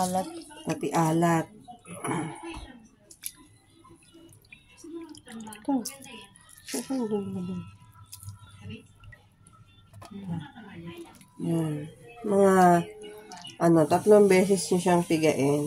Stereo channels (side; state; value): both; identical; correlation 1.00